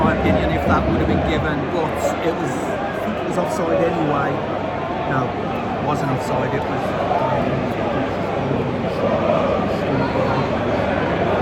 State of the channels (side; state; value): both; identical; correlation 1.00